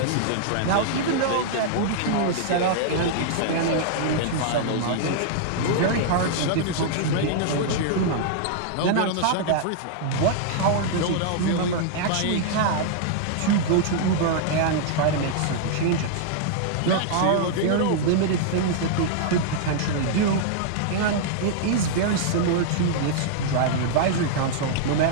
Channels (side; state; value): both; different; correlation -0.01